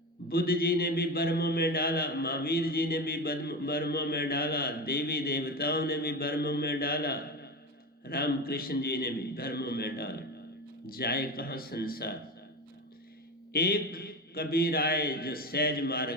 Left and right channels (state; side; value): normal; both; correlation 0.23